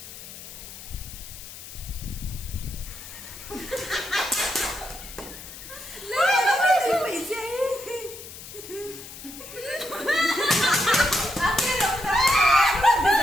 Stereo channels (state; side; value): noise; left; hiss, 14 dB below the sound